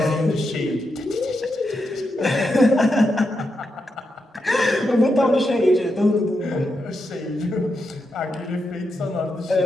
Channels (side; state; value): both; normal; correlation 0.85